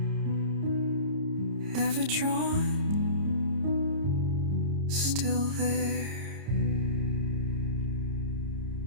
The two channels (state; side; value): late; left; 30 ms